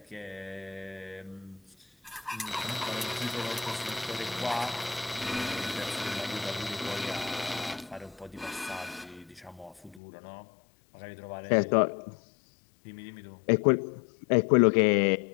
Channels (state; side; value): drops out; right; at 10.0 s